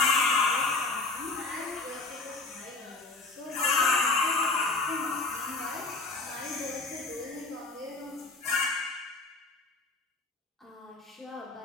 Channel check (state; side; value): quieter; right; 3.5 dB